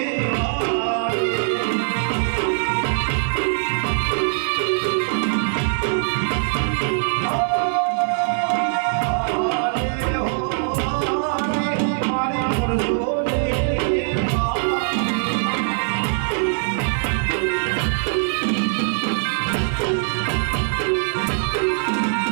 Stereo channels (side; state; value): left; silent; 64 dB below the other